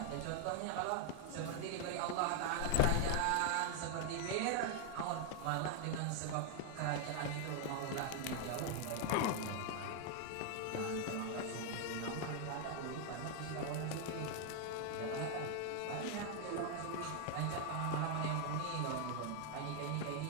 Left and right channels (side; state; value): both; different; correlation 0.00